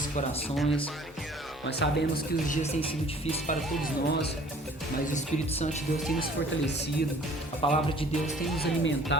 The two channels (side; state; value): both; normal; correlation 0.53